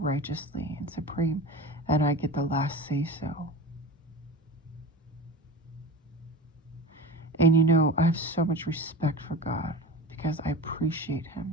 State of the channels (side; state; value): both; normal; correlation 0.31